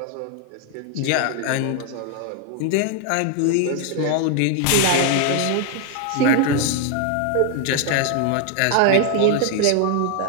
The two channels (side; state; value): both; different; correlation 0.00